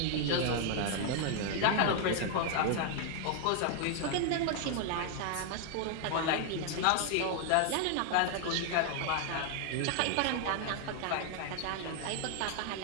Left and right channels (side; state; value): both; different; correlation 0.00